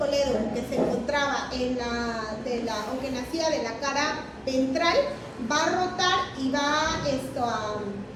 que se encontraba o que nacía de la cara ventral va a rotar y va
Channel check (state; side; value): identical; both; correlation 1.00